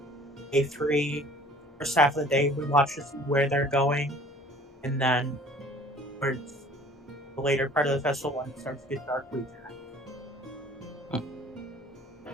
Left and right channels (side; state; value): both; normal; correlation 0.50